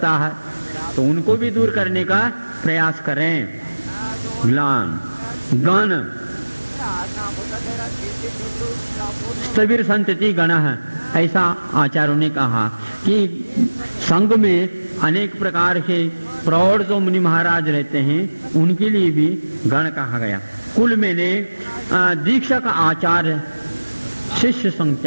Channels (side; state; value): both; inverted; correlation -1.00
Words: है, तो उनको भी दूर करने का प्रयास करें। ग्लान, गण, स्थविर संतति गण है, ऐसा आचार्यों ने कहा कि संघ में अनेक प्रकार के प्रौढ़ जो मुनि महाराज रहते हैं उनके लिए भी गण कहा गया। कुल में ने दीक्षक, आचार्य, शिष्य